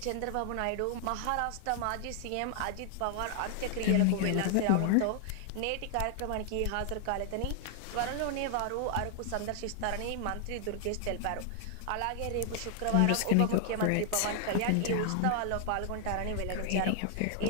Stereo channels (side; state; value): both; different; correlation 0.00